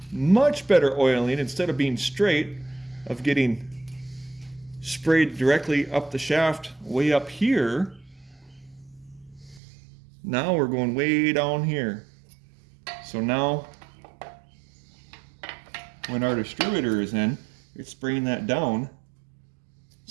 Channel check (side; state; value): left; drops out; at 9.6 s